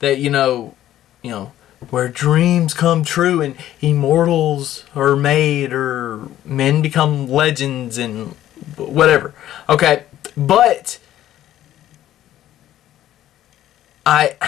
you know, where dreams come true and immortals are made or men become legends and whatever. Okay, but I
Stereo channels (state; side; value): quieter; right; 12.8 dB